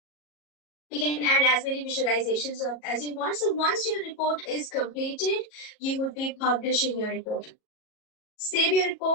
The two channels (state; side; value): late; right; 37 ms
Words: You can add as many visualizations as you want. So once your report is completed, you would be publishing your report. Save your